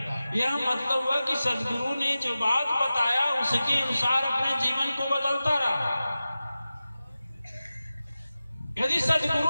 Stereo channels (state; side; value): inverted; both; correlation -0.94